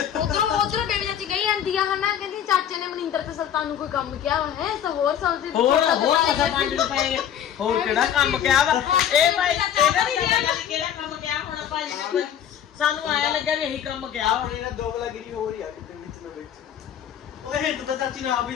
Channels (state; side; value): quieter; right; 9.7 dB